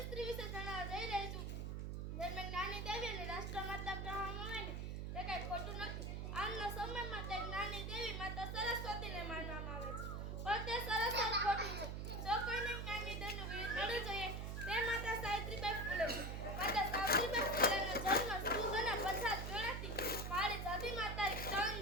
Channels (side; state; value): right; noise; hum, 4 dB below the sound